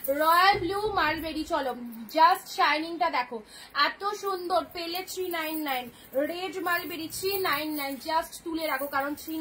মালবেরি। চলো, জাস্ট শাইনিংটা দেখো, এত সুন্দর পেলে 399। রেড মালবেরি 399, জাস্ট তুলে রাখো, কারণ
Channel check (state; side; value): identical; both; correlation 1.00